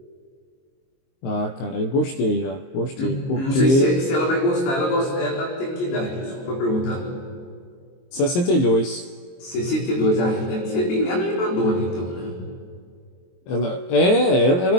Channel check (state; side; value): late; right; 23 ms